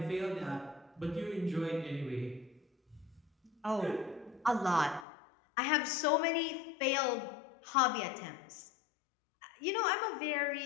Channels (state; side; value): drops out; right; at 5.1 s